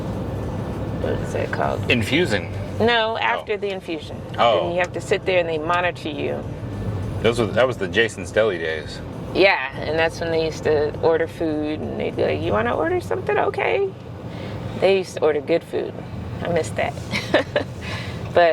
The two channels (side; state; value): both; identical; correlation 1.00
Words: What is it called? Infusing. No, after the infusion. Oh. And you have to sit there and they monitor you. That was the Jason's Deli days. Yeah, and that's when they used to order food, and they'd be like, you want to order something? Okay. They used to order good food. I miss that.